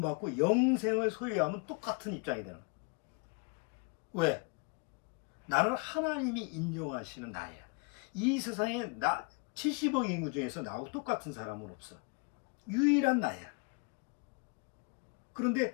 영생을 소유하면 똑같은 입장이 되는 거야. 왜? 나는 하나님이 인정하시는 나야. 이 세상에 70억 인구 중에서 나하고 똑같은 사람은 없어. 유일한 나야.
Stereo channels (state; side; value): quieter; right; 30.4 dB